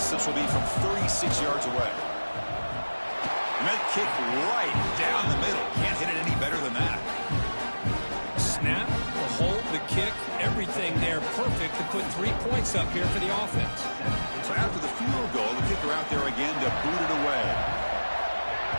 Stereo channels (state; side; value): inverted; both; correlation -1.00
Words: will be from 36 yards away. Med kick right down the middle. Can't hit it any better than that. Snap, the hold, the kick, everything there perfect to put 3 points up here for the offense. So after the field goal, the kicker out there again to boot it away.